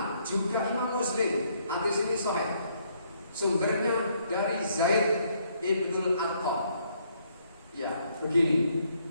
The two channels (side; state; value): both; inverted; correlation -0.70